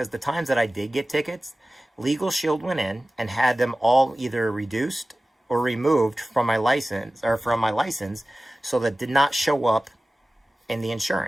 the times that I did get tickets, Legal Shield went in and had them all either reduced or removed from my license, so that did not show up in the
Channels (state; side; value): normal; both; correlation 0.96